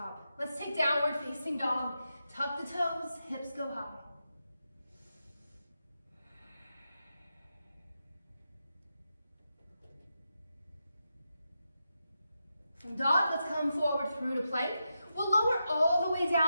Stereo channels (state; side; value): inverted; both; correlation -0.87